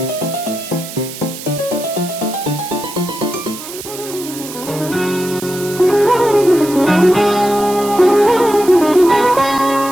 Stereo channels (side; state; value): right; noise; hiss, 12 dB below the sound